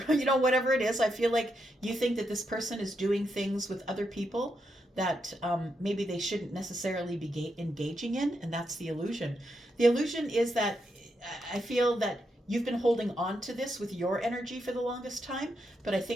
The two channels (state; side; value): normal; both; correlation 0.82